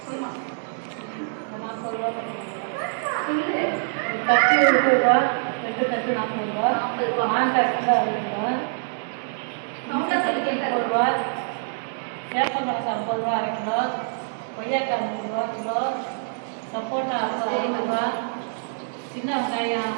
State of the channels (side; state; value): left; silent; digital silence